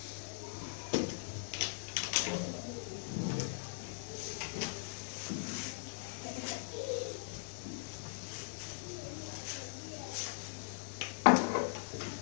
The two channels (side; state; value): right; silent; digital silence